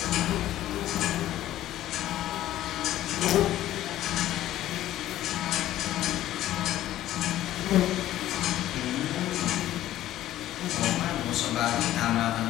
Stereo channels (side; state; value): right; quieter; 13.7 dB